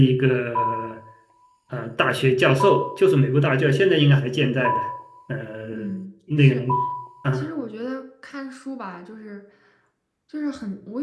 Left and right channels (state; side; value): identical; both; correlation 1.00